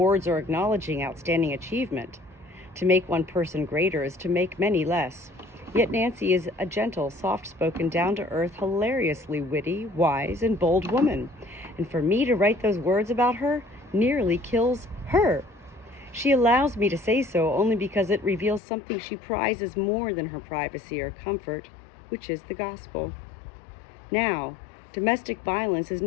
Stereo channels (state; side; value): drops out; right; at 18.6 s